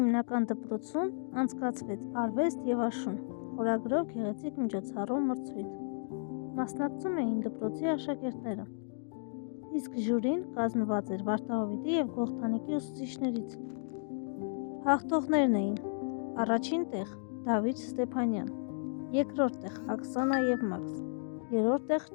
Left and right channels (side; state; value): right; silent; digital silence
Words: Տնտեսական դպրոցում անցկացվեց արվեստ և աշուն խորագրով գեղեցիկ միջոցառում մրցույթ։ Մասնակցում էին դպրոցի աշակերտները, իսկ ժյուրին կազմված էր Վարդահովիտի և Գողթանիկի ուսուցիչներից։ Հաղթողներն էին առաջին տեղ Դավիթ Ստեփանյան, երկրորդ տեղ Աքսանա և Մաքս, երրորդ տեղ